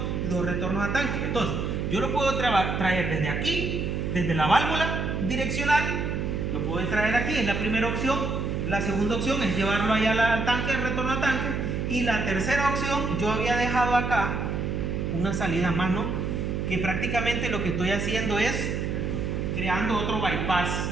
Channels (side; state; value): right; noise; hum, 1 dB below the sound